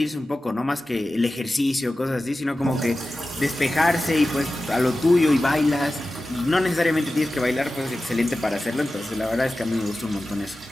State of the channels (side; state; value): both; normal; correlation 0.94